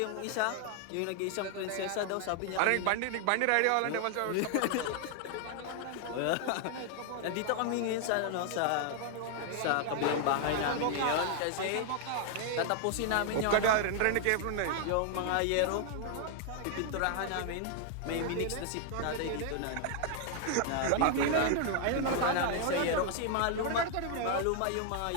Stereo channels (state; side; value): different; both; correlation 0.00